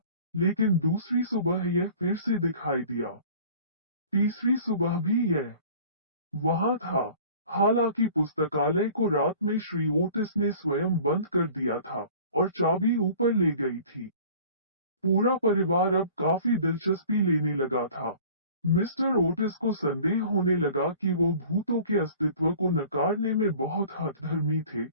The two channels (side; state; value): both; inverted; correlation -0.47